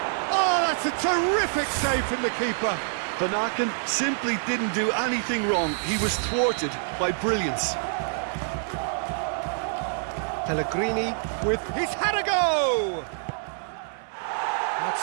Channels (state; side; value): silent; left; 57 dB below the other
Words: Oh, that's a terrific save from the keeper. Van Aken simply didn't do anything wrong. He was thwarted by brilliance. Pellegrini with... He's had a go! That's